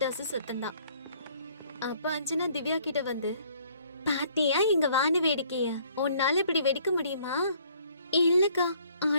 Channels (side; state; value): both; inverted; correlation -0.61